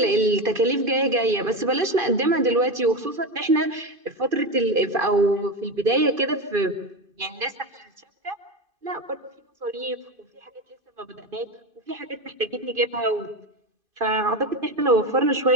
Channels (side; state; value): left; late; 2.5 ms